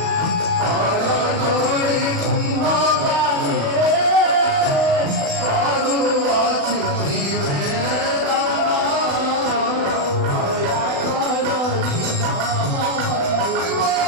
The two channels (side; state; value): left; late; 36 ms